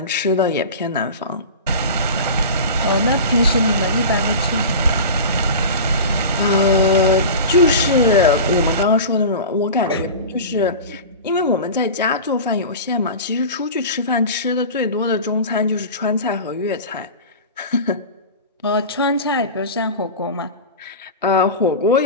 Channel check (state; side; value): inverted; both; correlation -0.31